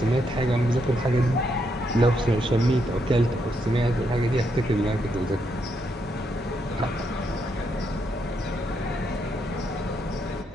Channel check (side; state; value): both; normal; correlation 0.78